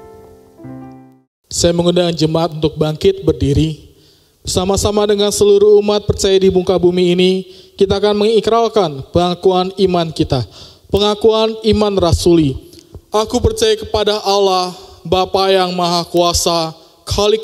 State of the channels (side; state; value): both; identical; correlation 1.00